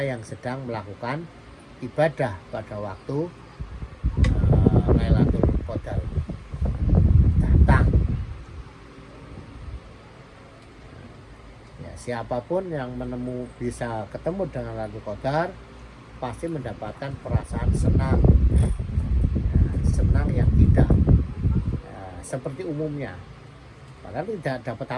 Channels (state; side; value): identical; both; correlation 1.00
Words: yang sedang melakukan ibadah pada waktu Lailatul Qadar datang. Ya, siapapun yang bisa ketemu dengan Lailatul Qadar pasti mendapatkan perasaan senang, ya, senang yang tidak seperti umumnya. Padahal tidak dapat